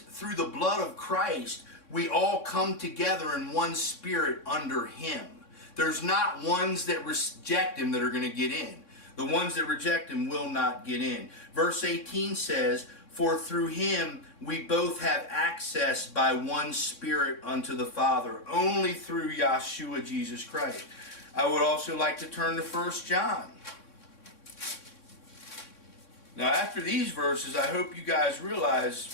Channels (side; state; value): right; late; 3.6 ms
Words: through the blood of Christ, we all come together in one spirit under him. There's not ones that reject him that are going to get in. The ones that reject him will not get in. Verse 18 says, for through him we both have access by one spirit unto the Father, only through Yahshua Jesus Christ. I would also like to turn to 1 John. Now, after these verses, I hope you guys